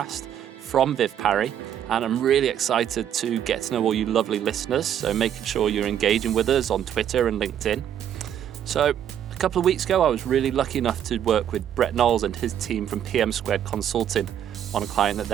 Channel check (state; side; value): quieter; left; 9.9 dB